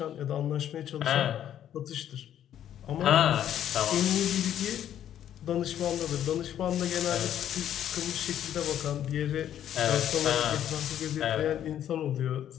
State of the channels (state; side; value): quieter; right; 10.7 dB